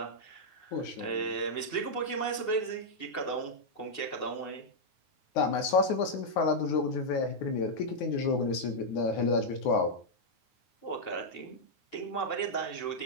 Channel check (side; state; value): right; late; 9.5 ms